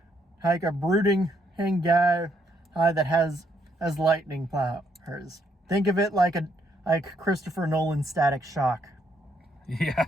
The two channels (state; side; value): normal; both; correlation 0.73